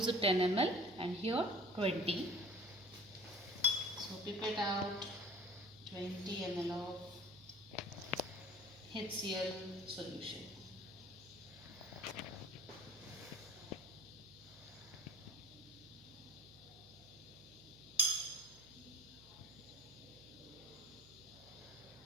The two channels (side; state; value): right; noise; hum, 23 dB below the sound